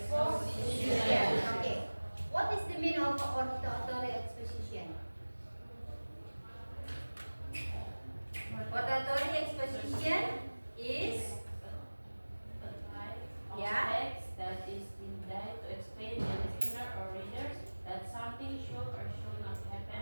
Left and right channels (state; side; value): inverted; both; correlation -1.00